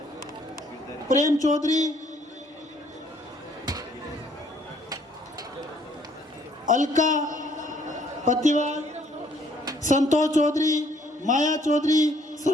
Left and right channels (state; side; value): normal; both; correlation 0.64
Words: प्रेम चौधरी, अलका पतिवाल, संतोष चौधरी, माया चौधरी,